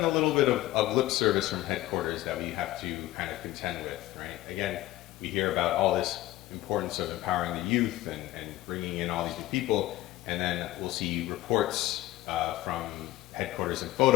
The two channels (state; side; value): quieter; right; 16.5 dB